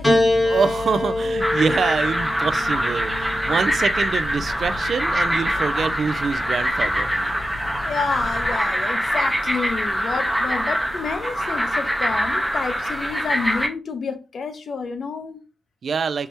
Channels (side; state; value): both; normal; correlation 0.90